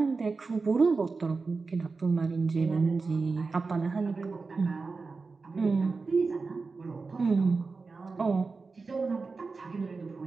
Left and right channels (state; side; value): quieter; left; 4.2 dB